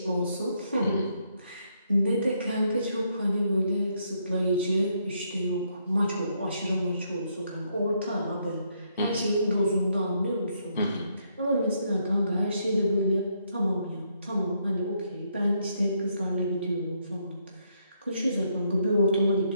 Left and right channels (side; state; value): both; inverted; correlation -0.74